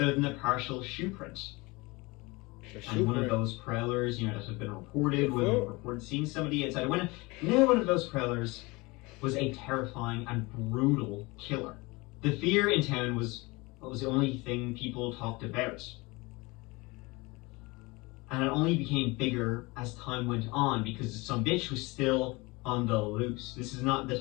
than a partial shoe print. And one of those prowlers, you know, that had been reported seeing somebody outside a window. Now one of those prowlers was a terrifying and brutal killer. The fear in town was the only thing people talked about. And it only became bigger as time went on because some bitch was still on the loose. This is not the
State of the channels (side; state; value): right; quieter; 24.4 dB